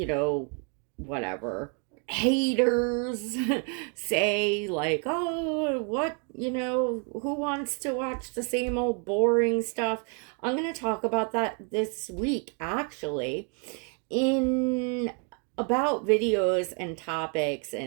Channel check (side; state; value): left; quieter; 38.9 dB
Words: whatever haters say, like, oh, what, who wants to watch the same old boring stuff? I'm going to talk about that this week, actually, in about videos and topics.